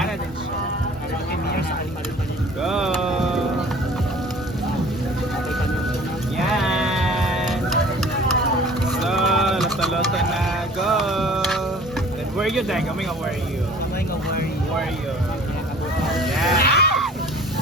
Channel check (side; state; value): both; normal; correlation 0.48